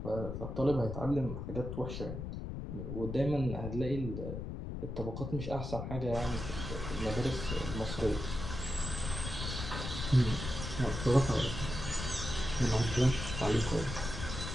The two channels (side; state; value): left; noise; rumble, 6 dB below the sound